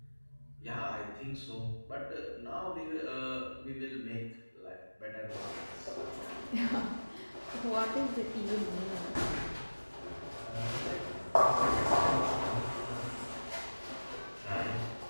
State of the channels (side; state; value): both; inverted; correlation -1.00